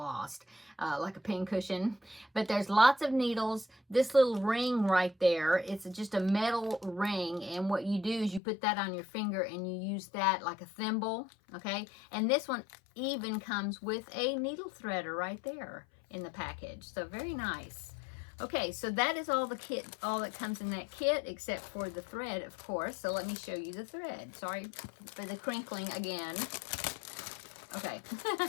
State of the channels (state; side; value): drops out; right; at 8.4 s